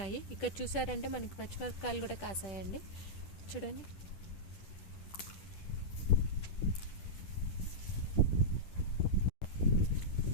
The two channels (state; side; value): late; right; 10 ms